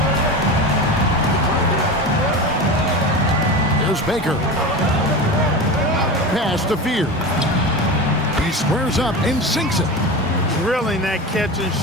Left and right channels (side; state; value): both; normal; correlation 0.26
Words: Here's Baker. Pass to Fear. He squares up and sinks it. Drilling that catch and